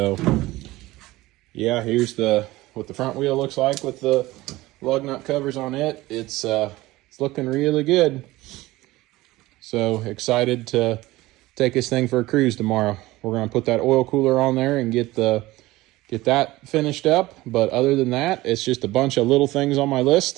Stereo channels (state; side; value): quieter; left; 18.6 dB